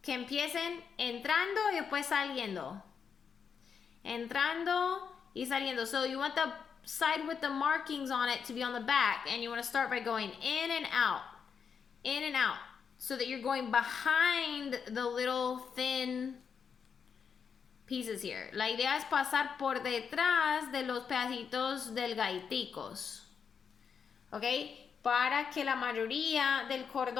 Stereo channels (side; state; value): right; quieter; 6.6 dB